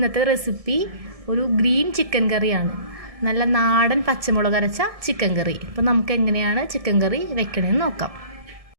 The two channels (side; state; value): left; late; 1.7 ms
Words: recipe ഒരു ഗ്രീൻ ചിക്കൻ കറിയാണ്. നല്ല നാടൻ പച്ചമുളക് അരച്ച ചിക്കൻ കറി. അപ്പോൾ നമുക്ക് എങ്ങനെയാണ് ചിക്കൻ കറി വെക്കണമെന്ന് നോക്കാം.